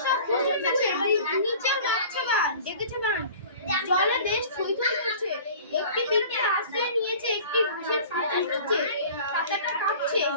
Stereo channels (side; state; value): both; inverted; correlation -0.43